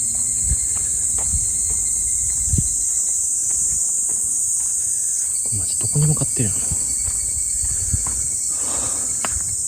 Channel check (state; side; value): identical; both; correlation 1.00